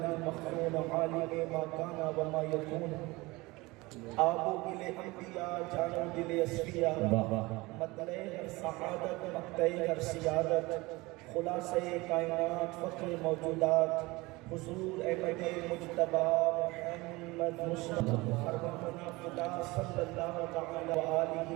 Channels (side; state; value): left; quieter; 22.4 dB